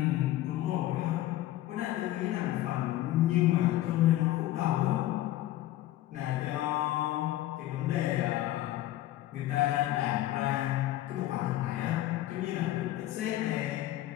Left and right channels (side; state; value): right; quieter; 14.7 dB